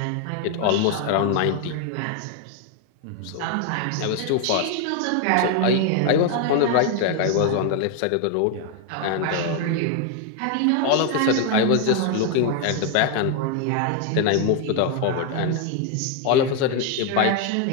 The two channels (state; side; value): different; both; correlation 0.01